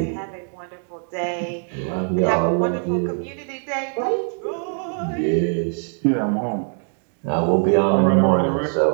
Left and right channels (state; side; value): silent; left; 55 dB below the other